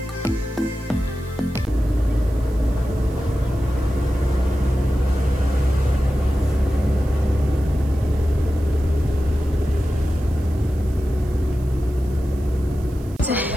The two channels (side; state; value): right; noise; hiss, 26 dB below the sound